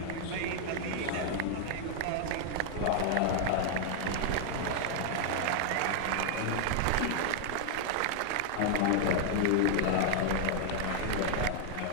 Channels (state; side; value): different; both; correlation 0.00